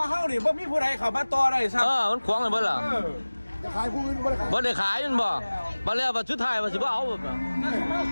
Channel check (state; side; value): inverted; both; correlation -1.00